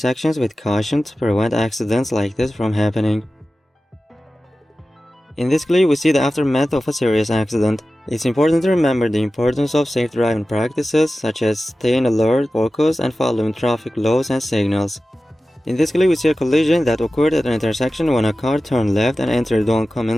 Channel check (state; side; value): normal; both; correlation 0.95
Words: with caution to prevent accidents like this from happening. In this clip, we see the aftermath of a serious accident. It's important to remember the importance of safe driving practices such as staying alert, focused, and following traffic laws and signals. In this clip, we see a collision that occurred at an intersection when a car turned left and entered the